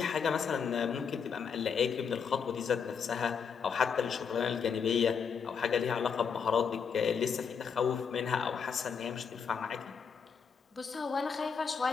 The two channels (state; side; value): quieter; right; 6.4 dB